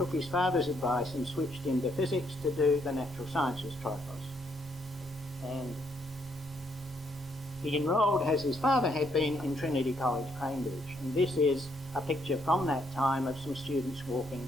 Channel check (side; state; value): both; normal; correlation 0.73